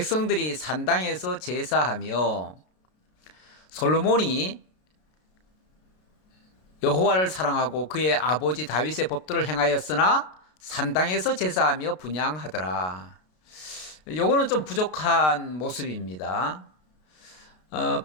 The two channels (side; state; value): right; late; 33 ms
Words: 산당에서 제사하며, 솔로몬이 여호와를 사랑하고 그의 아버지 다윗의 법도를 행하였으나 산당에서 제사하며 분향하더라. 요거는 좀 부족한 모습입니다.